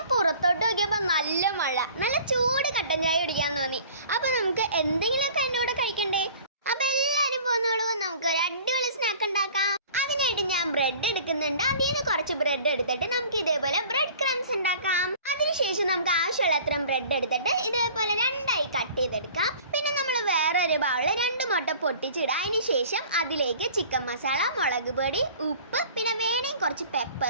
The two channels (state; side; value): inverted; both; correlation -0.47